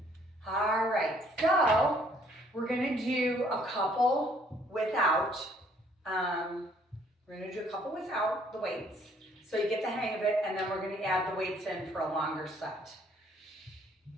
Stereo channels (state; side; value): normal; both; correlation 0.63